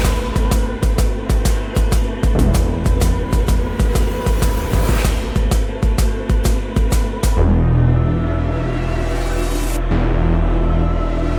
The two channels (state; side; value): identical; both; correlation 1.00